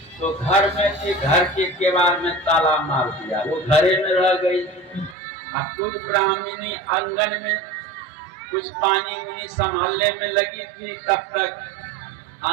तो घर में थी, घर के केवाड़ में ताला मार दिया, वो घरे में रह गई। अब कुछ ब्राह्मणी आंगन में कुछ पानी उनी संभालने में लगी थी, तब तक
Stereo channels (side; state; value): left; drops out; at 5.2 s